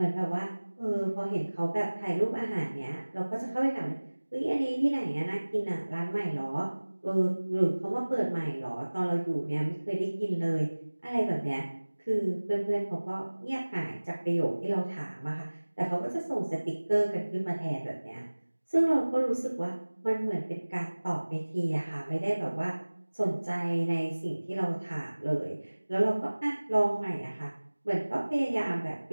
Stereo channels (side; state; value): both; inverted; correlation -1.00